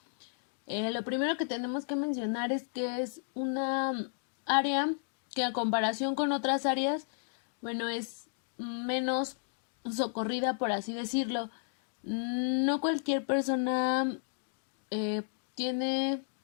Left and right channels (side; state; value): right; silent; digital silence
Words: lo primero que tenemos que mencionar es que es una área que, a comparación con otras áreas, bueno, es menos socorrida, por así decirlo. No cualquier persona tiene